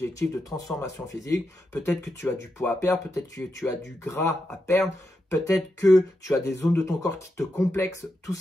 de transformation physique. Peut-être que tu as du poids à perdre, peut-être que tu as du gras à perdre, peut-être que tu as des zones de ton corps qui te complexent, tout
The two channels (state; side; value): normal; both; correlation 0.86